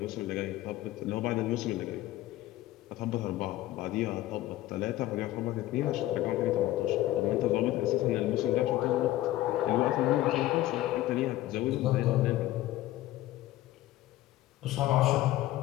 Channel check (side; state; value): right; quieter; 15.5 dB